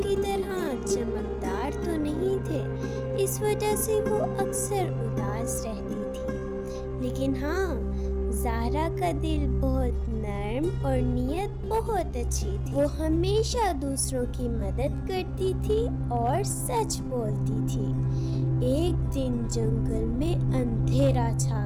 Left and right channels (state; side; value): identical; both; correlation 1.00